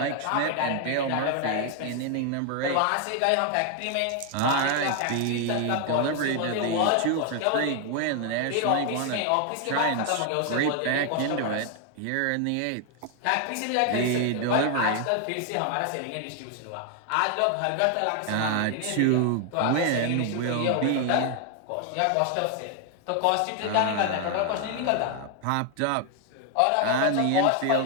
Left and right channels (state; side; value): different; both; correlation 0.00